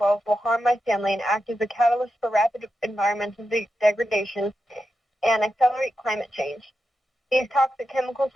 will harm my family and act as a catalyst for rapid environmental degradation and accelerate climate change. These toxic chemicals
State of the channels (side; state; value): both; normal; correlation 0.88